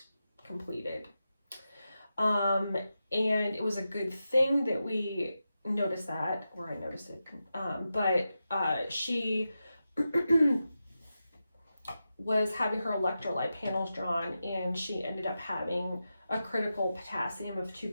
completed. And it was a good thing that we noticed that, or I noticed it. But she was having her electrolyte panels drawn, and she ended up having a critical potassium of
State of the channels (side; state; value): both; inverted; correlation -0.90